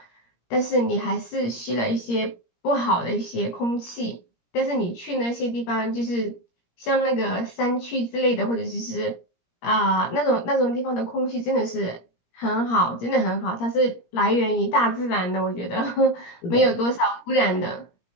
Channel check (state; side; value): late; right; 17 ms